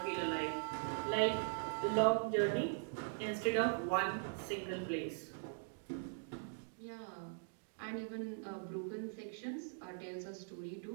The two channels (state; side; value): silent; left; digital silence